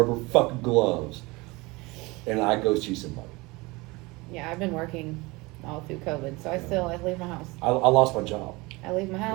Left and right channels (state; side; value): quieter; left; 23.8 dB